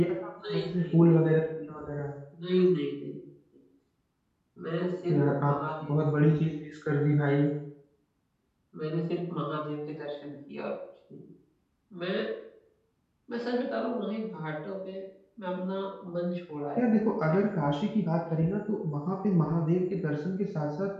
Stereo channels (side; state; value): both; identical; correlation 1.00